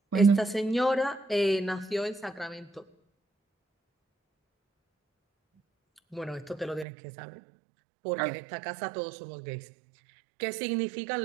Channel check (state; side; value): drops out; left; at 6.9 s